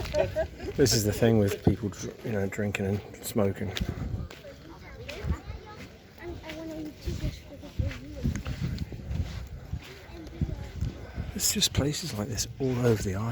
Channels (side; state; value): both; identical; correlation 1.00